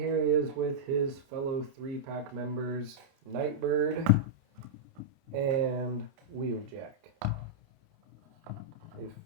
he is with his fellow 3-pack members, Nightbird and Wheeljack. If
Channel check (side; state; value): left; late; 29 ms